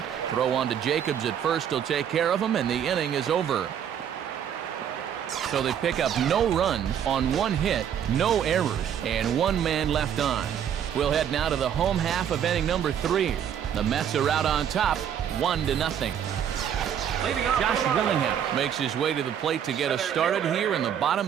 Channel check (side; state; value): left; quieter; 9.0 dB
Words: Throw on to Jacobs at first. He'll take care of him, and the inning is over. So they pick up no runs on 1 hit, no errors, and 1 man left on. We'll head now to the home half of inning number 3. The Mets are out on top, 1-0. Josh Willingham makes his way to the plate to get us started here in the